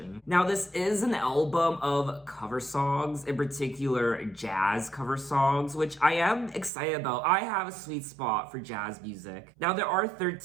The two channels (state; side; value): drops out; left; at 6.7 s